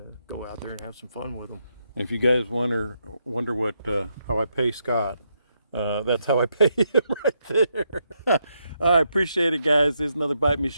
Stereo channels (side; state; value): both; inverted; correlation -0.80